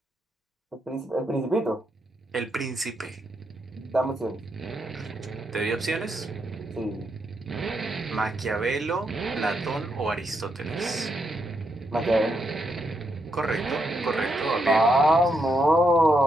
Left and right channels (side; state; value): both; normal; correlation 0.80